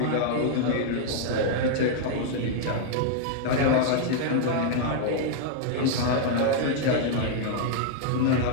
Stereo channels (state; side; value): different; both; correlation -0.01